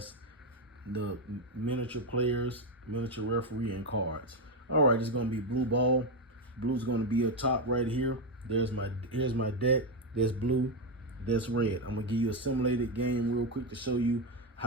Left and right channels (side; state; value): both; normal; correlation 0.08